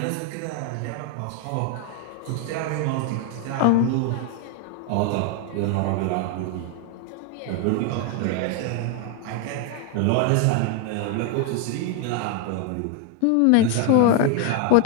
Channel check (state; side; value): different; both; correlation 0.00